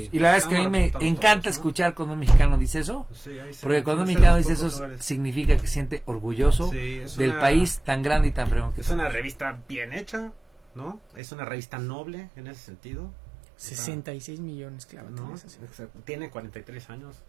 Y la verdad es que a mí Estamos me representados encanta todos, ¿no? escuchar cuando un mexicano dice eso, Sí, ahí se- porque cuando un es de mexicano los dice pocos eso lugares. significa que se siente orgulloso Sí, es del una- país tan grande y tan fregón que Es una revista bien hecha, ¿no? Es una revista noble en ese sentido. 66 millones, claro. ¿No? tienes así. Exacto. Tiene 43 años.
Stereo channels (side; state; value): left; drops out; at 11.2 s